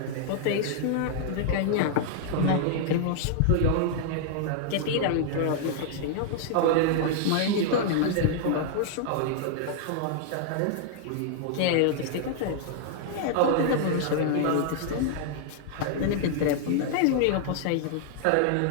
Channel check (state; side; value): different; both; correlation -0.01